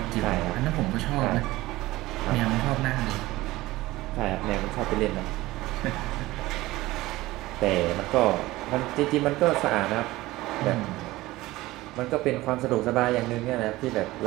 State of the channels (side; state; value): left; quieter; 18.3 dB